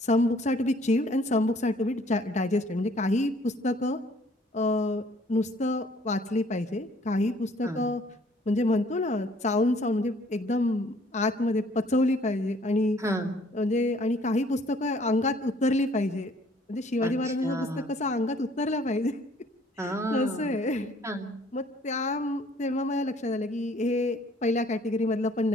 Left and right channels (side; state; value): both; normal; correlation 0.59